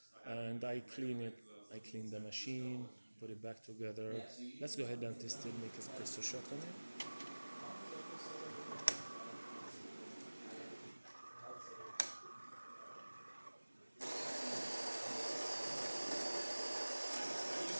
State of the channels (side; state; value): both; inverted; correlation -1.00